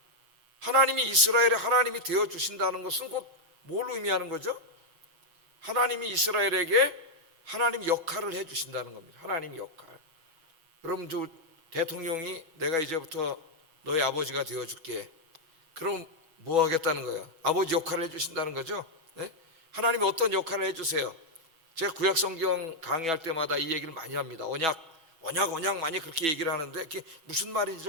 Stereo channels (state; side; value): late; left; 6.1 ms